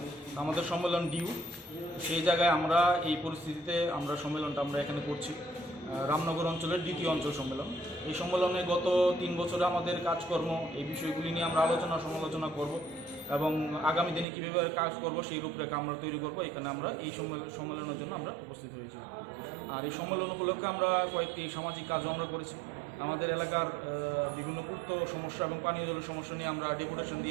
আমাদের সম্মেলন ডিউ, সেই জায়গায় আমরা এই পরিস্থিতিতে আমরা সম্মেলনটা আমরা এখানে করছি। রামনগর অঞ্চলের দ্বিতীয় অঞ্চল সম্মেলন। এই সম্মেলনে গত 3 বছরে আমাদের কাজকর্ম এই বিষয়গুলি নিয়ে আমরা আলোচনা সমালোচনা করব এবং আগামী দিনে কীভাবে কাজ করব সেই রূপরেখা আমরা তৈরি করব। এখানে আমরা এই সম্মেলনের জন্য আমরা উপস্থিত হয়েছি। আর এই সম্মেলন উপলক্ষে আমরা কয়েকটি সামাজিক কাজও আমরা করেছি। আমাদের এলাকার বিভিন্ন পূর্ত সমস্যা এবং পানীয় জলের সমস্যা নিয়ে আমরা ডেপুটেশন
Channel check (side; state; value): left; drops out; at 14.2 s